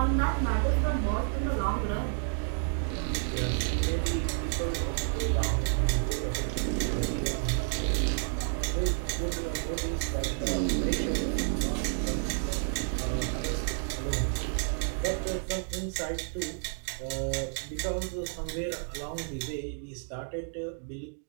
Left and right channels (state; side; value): silent; left; digital silence